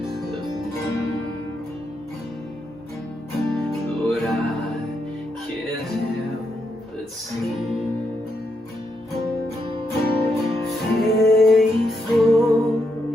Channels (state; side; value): normal; both; correlation 0.81